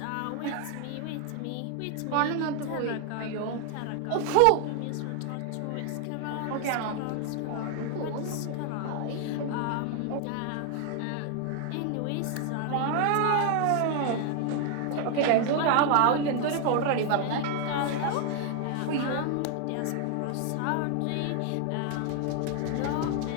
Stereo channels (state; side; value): different; both; correlation 0.00